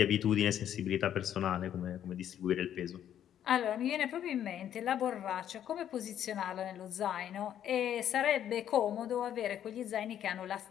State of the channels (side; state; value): right; quieter; 10.3 dB